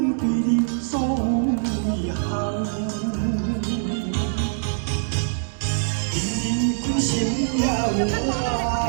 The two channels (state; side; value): silent; left; digital silence